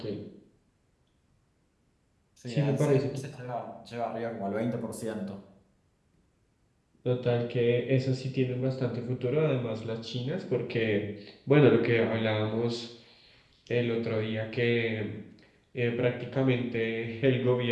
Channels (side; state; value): both; identical; correlation 1.00